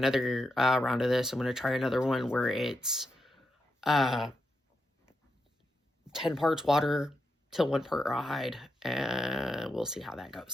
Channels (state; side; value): normal; both; correlation 0.85